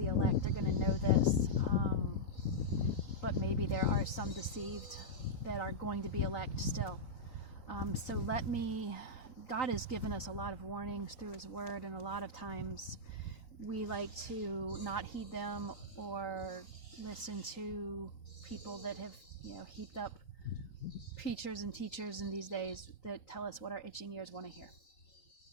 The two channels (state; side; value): late; right; 3.9 ms